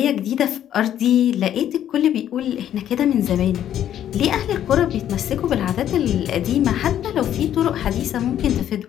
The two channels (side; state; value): right; quieter; 10.8 dB